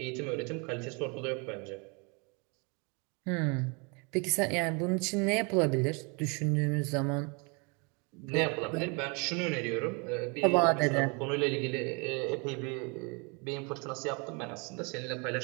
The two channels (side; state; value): left; quieter; 32.0 dB